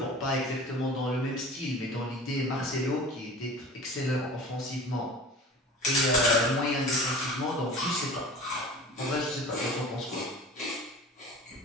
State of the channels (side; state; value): both; normal; correlation 0.39